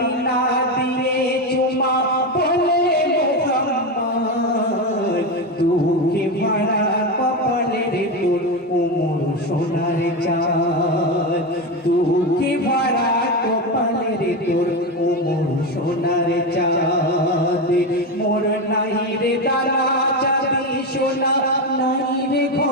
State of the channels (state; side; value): normal; both; correlation 0.15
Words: দিয়ে চুমা বলে মুহাম্মদ দুঃখে ভরা কপালের তোর উমর সোনার চাঁদ দুঃখে ভরা কপালের তোর উমর সোনার চাঁদ মোর নাই রে দানা চাঁদি সোনা নাই রে